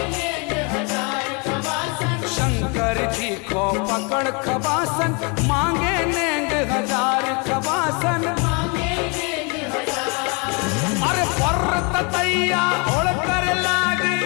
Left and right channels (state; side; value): quieter; right; 32.3 dB